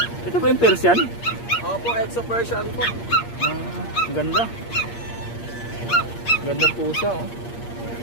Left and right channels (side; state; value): right; late; 8.6 ms